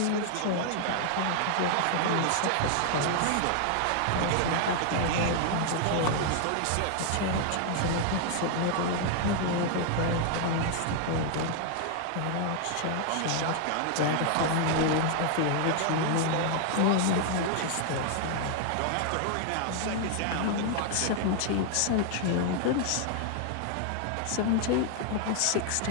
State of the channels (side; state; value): both; different; correlation 0.00